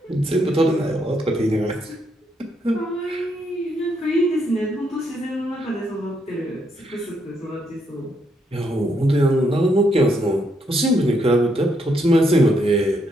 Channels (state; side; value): normal; both; correlation 0.76